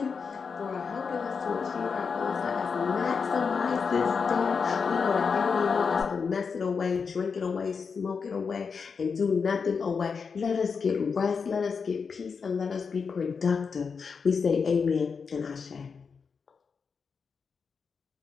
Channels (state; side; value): quieter; right; 5.6 dB